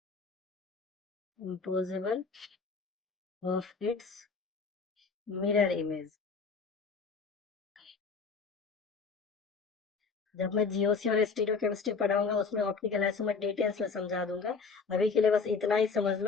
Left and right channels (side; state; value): right; quieter; 4.9 dB